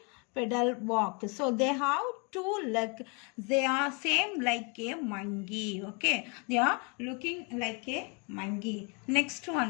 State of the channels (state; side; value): quieter; right; 31.8 dB